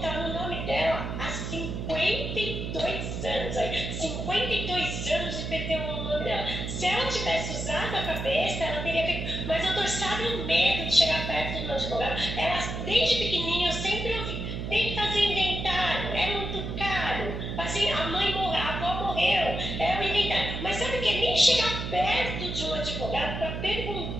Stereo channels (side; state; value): right; noise; hum, 5 dB below the sound